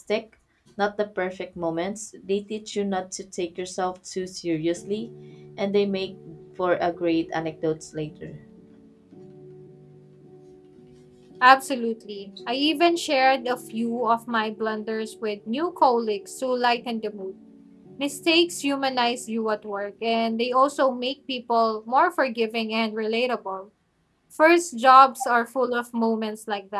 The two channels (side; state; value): both; identical; correlation 1.00